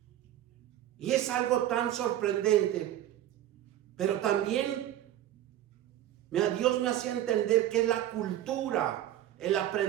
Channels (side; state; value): left; quieter; 12.6 dB